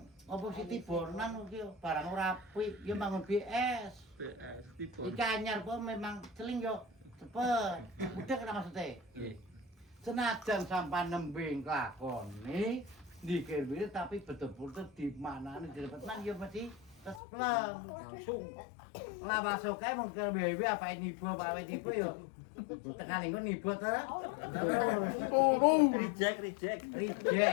apa Siti Bornan iki barang ora apik, ya bangun BS. PS tipe. Iki anyar po memang celing yo cepet. Udah kena maksudnya. Nggih. Senajan sampai nembe nglakoni dikir tapi betul-betul di manane direpetan ya mesti tespleng. Langsung. Lah masuk kae mung ke BB apa nibo Pak nibo yo. Tekan engko nibo to. Reject.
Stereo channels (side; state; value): right; drops out; at 17.2 s